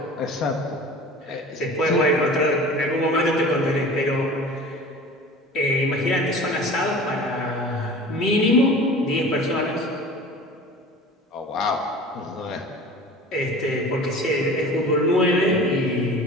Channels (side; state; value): both; normal; correlation 0.40